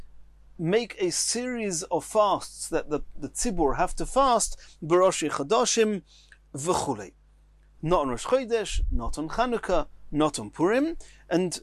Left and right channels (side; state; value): both; identical; correlation 1.00